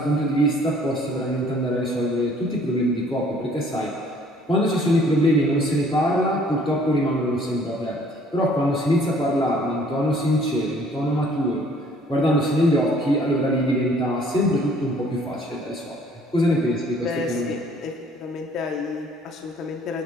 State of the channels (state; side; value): normal; both; correlation 0.58